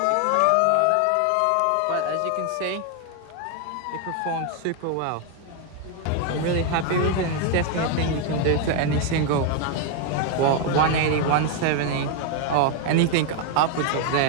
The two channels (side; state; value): both; different; correlation 0.01